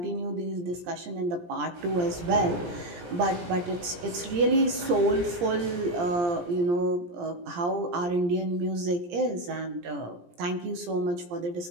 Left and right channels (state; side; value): late; left; 17 ms